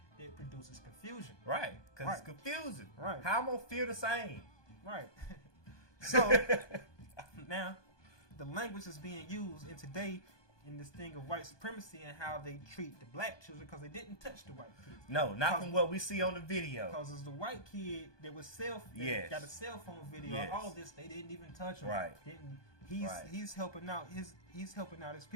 that produces confusion. Right. Because it's confusing. Right. How am I gonna feel the same? Right. So now the language is being used in today in this thing of white supremacy and how they treat the black children because they didn't touch the white kids. No, not from what we see on the video. Because it's the white kid that was got a cell phone video. All this they didn't even touch him. Right. He's helping out he's helping out his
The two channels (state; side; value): late; right; 1.2 ms